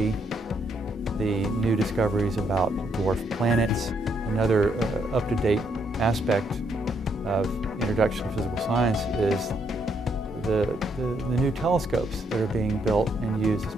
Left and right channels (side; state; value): both; normal; correlation 0.74